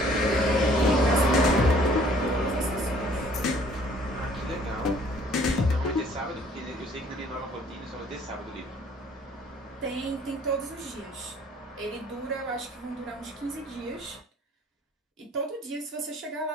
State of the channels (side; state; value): both; normal; correlation 0.57